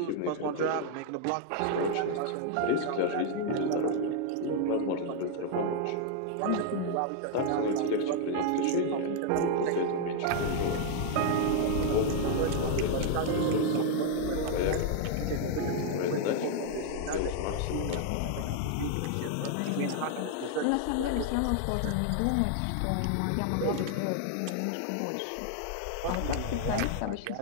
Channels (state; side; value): different; both; correlation 0.00